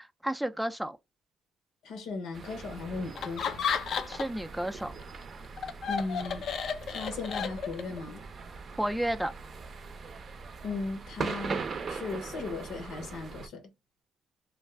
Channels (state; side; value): normal; both; correlation 0.79